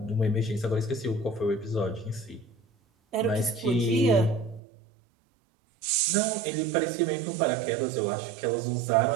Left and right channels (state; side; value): drops out; left; at 4.6 s